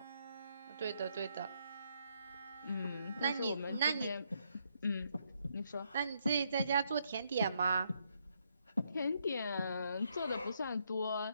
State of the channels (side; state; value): both; inverted; correlation -0.75